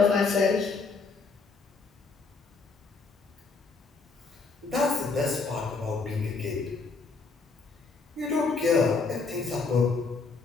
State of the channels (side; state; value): right; quieter; 4.4 dB